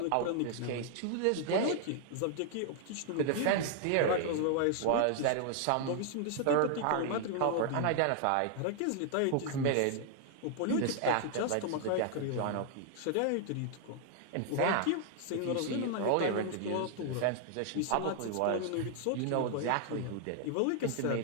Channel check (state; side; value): different; both; correlation 0.00